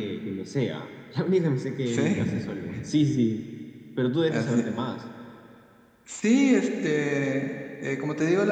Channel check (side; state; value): both; identical; correlation 1.00